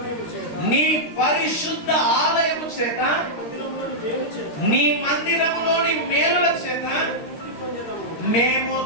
నీ పరిశుద్ధ ఆలయము చేత, నీ మందిరములోని మేలుల చేత మేము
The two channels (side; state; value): right; late; 13 ms